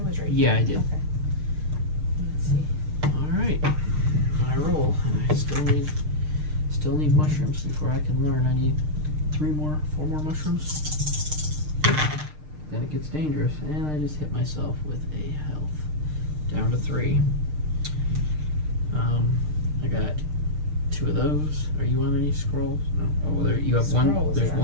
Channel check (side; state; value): left; late; 6.6 ms